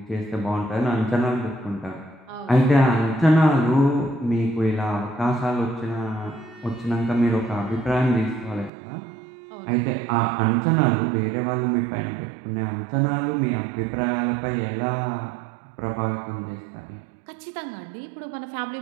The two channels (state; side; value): drops out; left; at 8.7 s